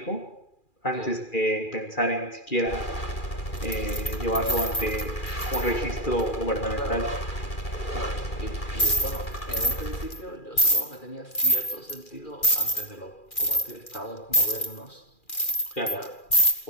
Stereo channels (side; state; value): right; late; 2.4 ms